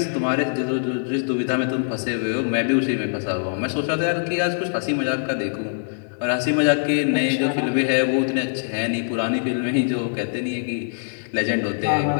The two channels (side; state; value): right; silent; digital silence